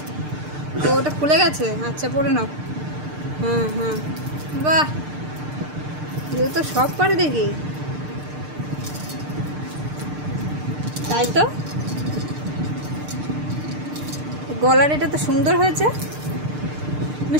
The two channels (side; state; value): left; late; 6.6 ms